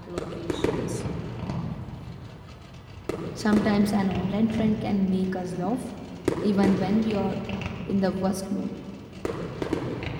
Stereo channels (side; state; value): both; identical; correlation 1.00